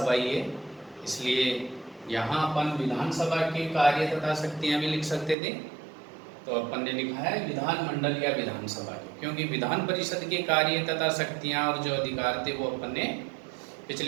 ही है, इसलिए यहाँ अपन विधानसभा के कार्य तथा शक्तियाँ भी लिख सकते थे। तो अपन ने लिखा है विधानमंडल या विधानसभा, क्योंकि विधान परिषद के कार्य तथा शक्तियाँ और जो अधिकार थे वो अपन ने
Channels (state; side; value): drops out; left; at 5.4 s